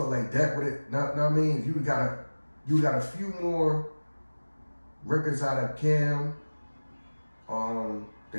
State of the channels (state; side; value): inverted; both; correlation -1.00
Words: like that would it. Now I mean, you got a few more records out of Cam.